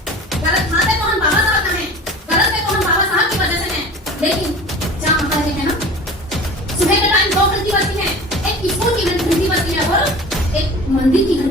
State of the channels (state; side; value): normal; both; correlation 0.39